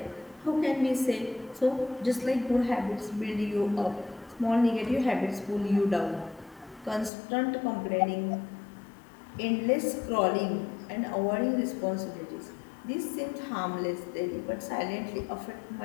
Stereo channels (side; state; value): right; drops out; at 7.1 s